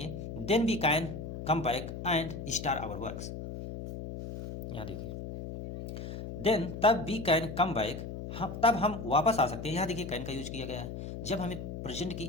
then we can come back and start our works. यहाँ देखिए देन तब वी कैन कम बैक, हम तब हम वापस आ सकते हैं। यहाँ देखिए कैन का यूज किया गया है जब हमें प्रेजेंट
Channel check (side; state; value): left; noise; hum, 8 dB below the sound